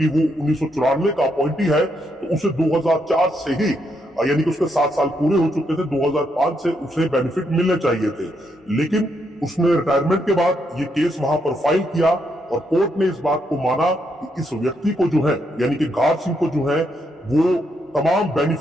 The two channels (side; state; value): both; normal; correlation 0.78